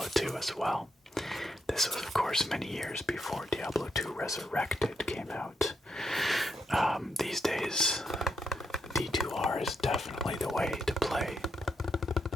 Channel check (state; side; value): normal; both; correlation 0.81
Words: 2 as well. This was, of course, many years before Diablo 2 Resurrected came out. These days, D2R is definitely the way to play